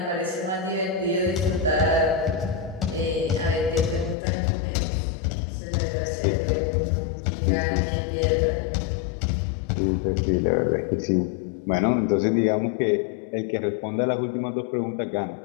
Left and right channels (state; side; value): drops out; right; at 4.2 s